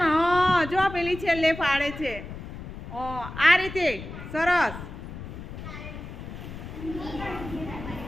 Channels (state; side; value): noise; left; rumble, 11 dB below the sound